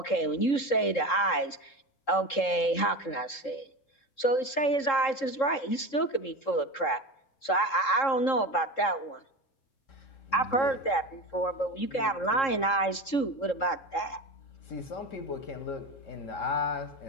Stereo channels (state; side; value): late; right; 3.7 ms